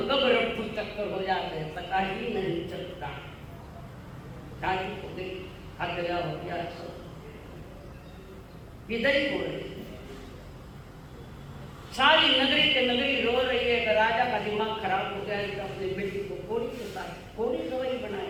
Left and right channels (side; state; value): both; identical; correlation 1.00